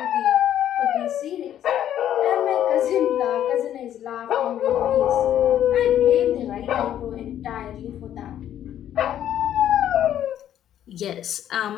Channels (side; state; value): right; quieter; 10.9 dB